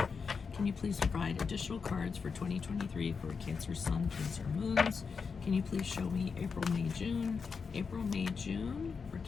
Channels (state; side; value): quieter; right; 5.4 dB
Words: Can you please provide additional cards for 2023 for Cancer Sun, Cancer Moons? Can you please show me April, May, June? April, May, June for